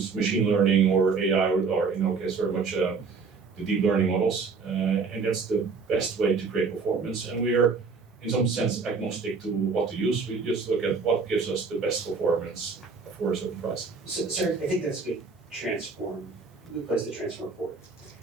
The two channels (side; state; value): left; quieter; 4.8 dB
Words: machine learning or AI, or in our case, very much the deep learning models, and that's the best way to create performance. And we are, in some sense, agnostic to what to use. We just look at what gives us the best performance for a certain price. So, sir, I think that's a good place to transform forward.